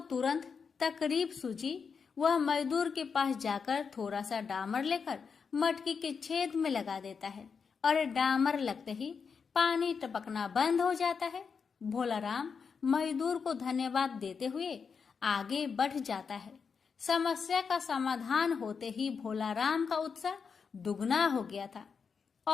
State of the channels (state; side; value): quieter; right; 5.8 dB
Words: तुरंत तकलीफ सूझी। वह मजदूर के पास जाकर थोड़ा सा डामर लेकर मटकी के छेद में लगा देता है और डामर लगते ही पानी टपकना बंद हो जाता है। भोलाराम मजदूर को धन्यवाद देते हुए आगे बढ़ जाता है। समस्या का समाधान होते ही भोलाराम का उत्साह दुगना हो गया था